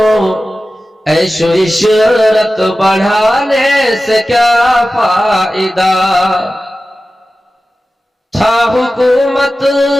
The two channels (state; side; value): normal; both; correlation 0.95